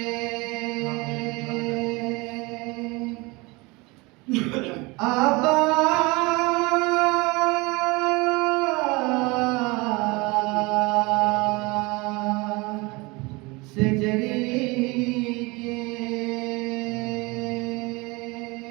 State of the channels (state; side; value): quieter; left; 25.2 dB